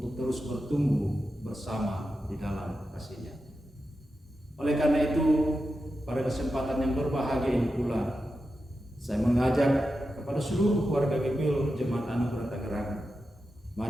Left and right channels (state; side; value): normal; both; correlation 0.90